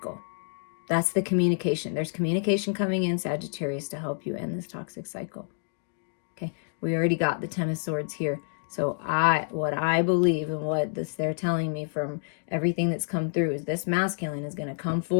That's the communication. There's communication coming in, Sagittarius, to help you end this toxic cycle. Okay, we already got the 10 of Swords here. So what I believe and what they're telling me from everything that's come through is this masculine is going to come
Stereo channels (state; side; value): silent; right; digital silence